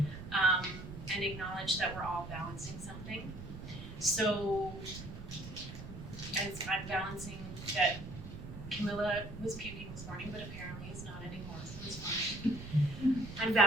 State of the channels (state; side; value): noise; right; rumble, 11 dB below the sound